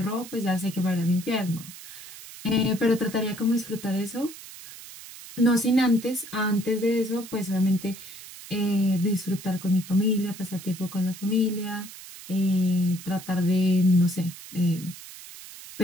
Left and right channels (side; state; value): right; noise; hiss, 15 dB below the sound